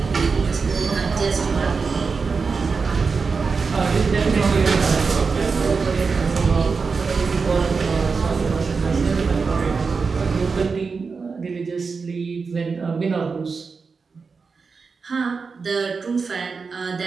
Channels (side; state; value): left; quieter; 4.9 dB